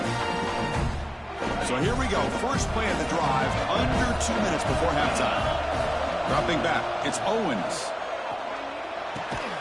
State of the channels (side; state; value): both; identical; correlation 1.00